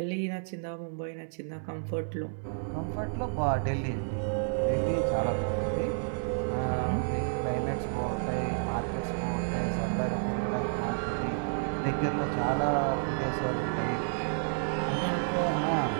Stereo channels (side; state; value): left; silent; digital silence